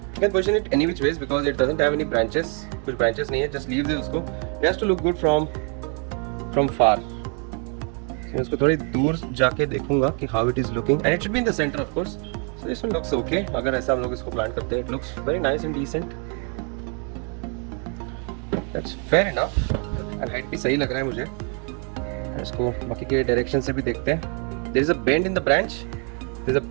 position it any which ways because it doesn't have any branches. कुछ branches नहीं है, just leaves है उसको। It has to look good from far. मैं इसको थोड़ी दूर जाके देखूंगा कि how it is looking, and it should be in the centre of course. So this one looks okay. अगर ऐसा हम लोग इसको प्लांट करते हैं, it looks very nice and decent. That's fair enough. And height भी सही लग रहा है मुझे। इसको बाकी के डायरेक्शन से भी देखते हैं। There is a bend in the branch. There is a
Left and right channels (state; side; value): quieter; left; 38.7 dB